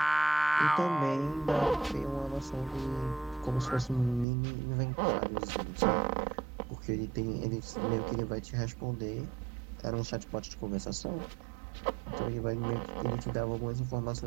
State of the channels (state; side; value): drops out; left; at 4.2 s